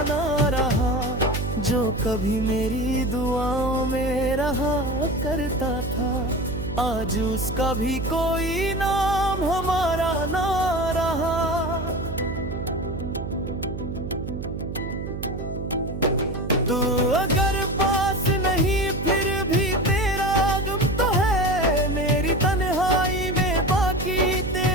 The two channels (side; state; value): right; noise; hum, 7 dB below the sound